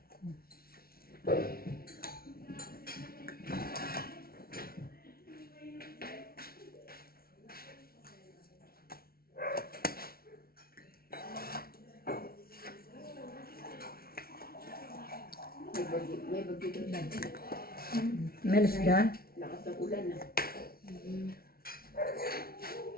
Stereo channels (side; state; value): right; late; 0.44 ms